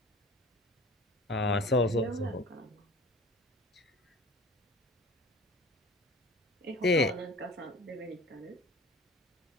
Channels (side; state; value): both; normal; correlation 0.42